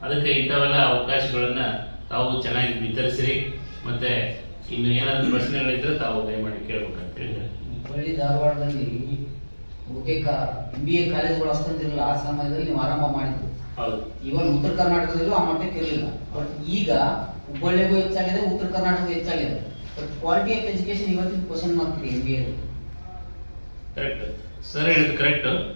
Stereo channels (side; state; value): both; inverted; correlation -1.00